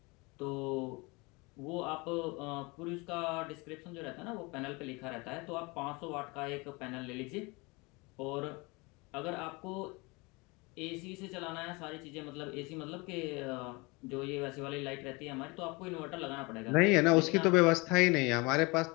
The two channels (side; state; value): right; quieter; 26.5 dB